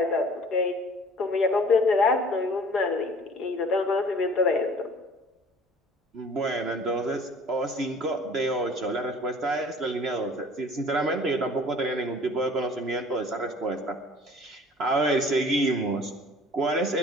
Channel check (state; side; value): normal; both; correlation 0.49